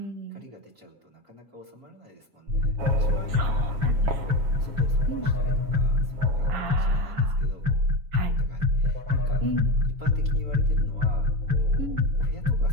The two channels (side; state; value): left; late; 7.2 ms